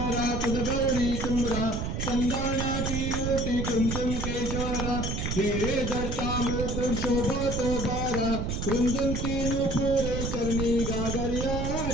तुझ गौरी तुमरा संदाना की मूर्ति कुंकुम केशरा हे दत्ता मुकुर शोभा तो बारा कुंदन की नुपुर करनी गागरिया।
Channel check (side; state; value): right; noise; rumble, 2 dB below the sound